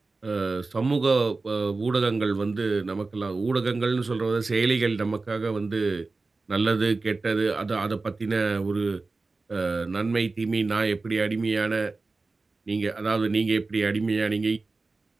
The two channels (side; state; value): left; quieter; 3.7 dB